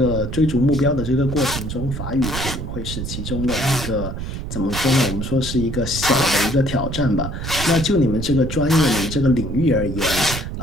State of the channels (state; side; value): noise; right; rumble, 6 dB below the sound